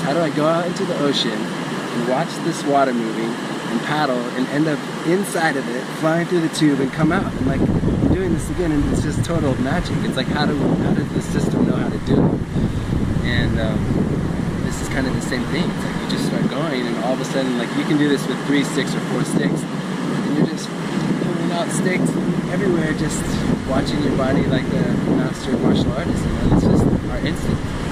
How do I go out into the ocean and watch this water moving and paddle and end up inside of it, flying through the tube and come out? And like, I'm doing this again, and it's just total magic. It's like, how does the system know how to do it? And this is kind of the same thing. It's like you just start going, and all of a sudden, like, you can do this with 3 sticks or 4 sticks, and you're just pulling out sticks everywhere, just watching your body like a master martial artist. You know? It's just our instinct.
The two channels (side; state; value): both; identical; correlation 1.00